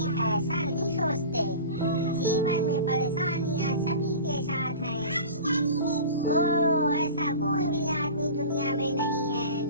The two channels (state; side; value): inverted; both; correlation -0.36